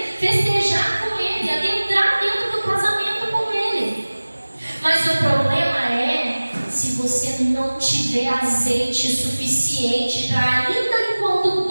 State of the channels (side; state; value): both; inverted; correlation -1.00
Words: festejar com ele, adentrar dentro do casamento com ele. Mas o problema é se você não tiver azeite suficiente para, ainda enquanto